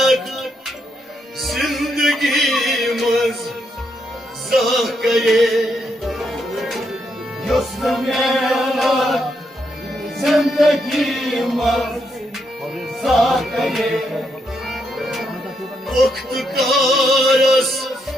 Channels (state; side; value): normal; both; correlation 0.79